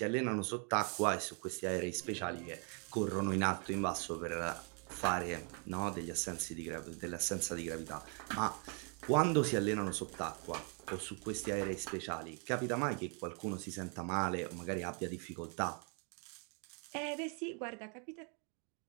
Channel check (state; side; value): quieter; left; 39.0 dB